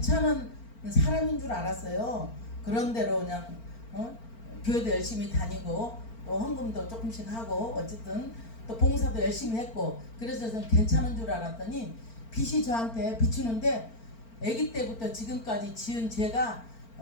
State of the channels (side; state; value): right; late; 4.4 ms